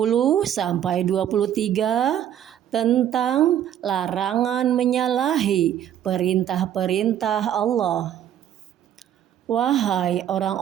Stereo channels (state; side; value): quieter; left; 10.5 dB